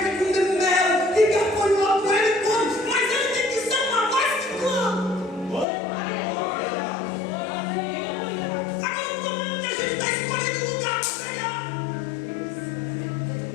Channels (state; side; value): drops out; right; at 5.7 s